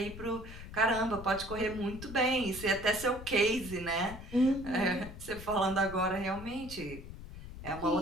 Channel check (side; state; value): left; noise; rumble, 12 dB below the sound